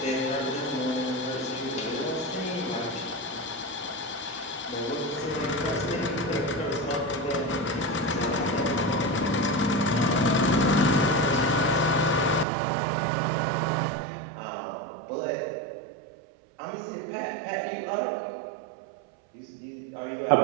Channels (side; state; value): left; drops out; at 12.5 s